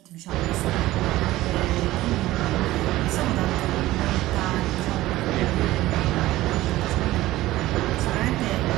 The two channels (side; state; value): left; quieter; 16.7 dB